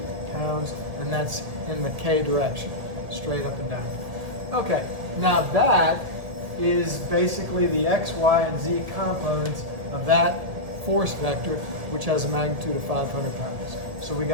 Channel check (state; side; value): late; left; 1.7 ms